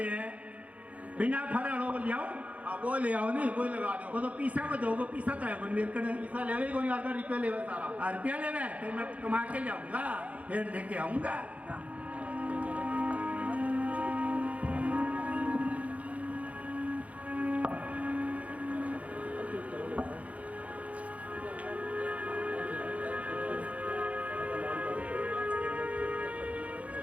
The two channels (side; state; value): left; late; 0.066 ms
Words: हैं बिना फरल हो जाओ। हाँ वो ले आओ नहीं वो लगा दो। वो तो पीसा को दो पीसा तो है कोई मेरे को पैसा लेवे कोई आकर रुपया लेवे सारा। रुपया लेवे तो मैं कमा के जाऊंगा फिर लेके आऊंगा।